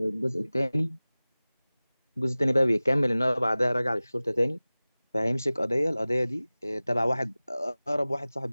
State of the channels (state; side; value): inverted; both; correlation -0.98